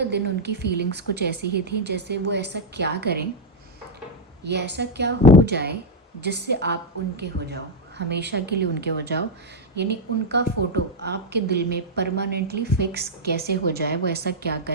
दिन उनकी फीलिंग्स कुछ ऐसी ही थी जैसे वो ऐसा क्या करें या ऐसा क्या हो जाए जिससे आप उनके हो जाओ, हमेशा के लिए उनके हो जाओ, यानी उनका फ़ोटो आपके दिल में परमानेंटली फिक्स कैसे हो जाए, वो ऐसा क्या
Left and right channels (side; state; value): both; normal; correlation -0.01